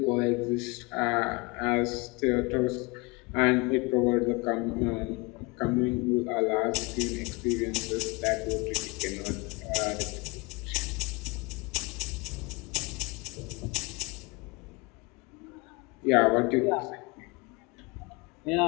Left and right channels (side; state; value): right; quieter; 27.2 dB